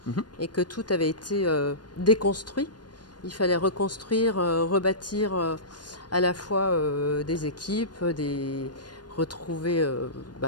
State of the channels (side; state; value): right; late; 0.70 ms